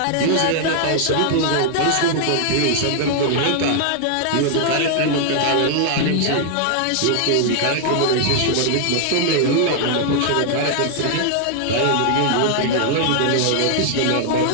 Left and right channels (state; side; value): different; both; correlation 0.00